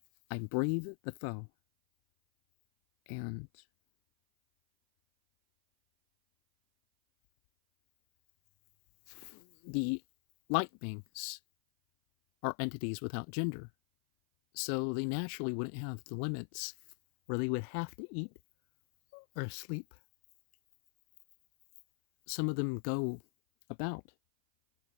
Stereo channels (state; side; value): silent; right; 52 dB below the other